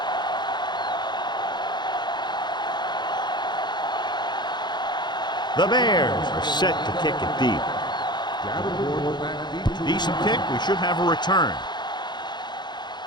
The Bears are set to kick it deep. Decent kick. We should have a return.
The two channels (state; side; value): late; right; 0.21 ms